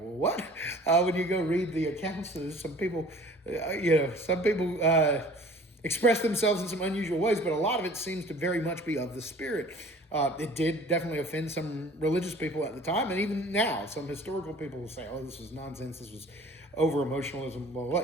what? When you go read the accounts, some people, express themselves in some unusual ways, but a lot of it seems to very much be of the Spirit. It did definitely offend some religious people at the time, and even now, some historical people will say, oh, this was nonsense, this was over-emotionalism.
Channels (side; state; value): both; normal; correlation 0.48